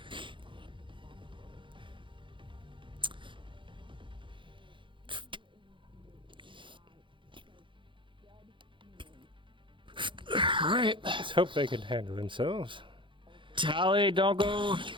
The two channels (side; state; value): left; late; 0.24 ms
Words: All right. Let's hope they can handle themselves. Tally, don't go.